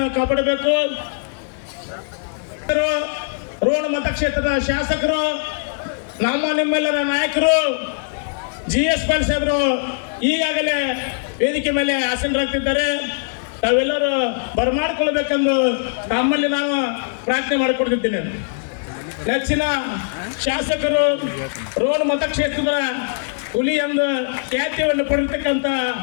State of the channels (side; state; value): right; silent; digital silence